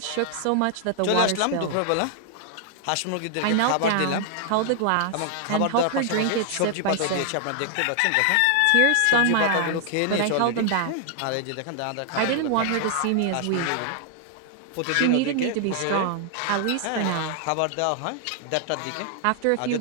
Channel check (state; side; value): different; both; correlation 0.00